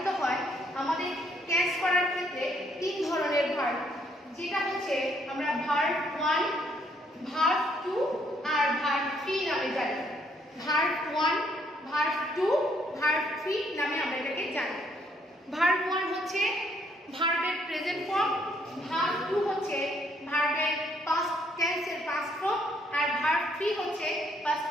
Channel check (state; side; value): normal; both; correlation 0.69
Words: হয় আমাদের টেন্স করার ক্ষেত্রে তিন ধরনের ভার্ব যেটা হচ্ছে আমরা ভার্ব 1 ভার্ব 2 আর ভার্ব 3 নামে জানি ভার্ব 1 ভার্ব 2 ভার্ব 3 নামে আমরা এটাকে জানি ভার্ব 1 হচ্ছে ভার্বের প্রেজেন্ট ফর্ম ভার্ব 2 হচ্ছে ভার্বের পাস্ট টেন্সের পাস্ট ফর্ম আর ভার্ব 3 হচ্ছে পাস্ট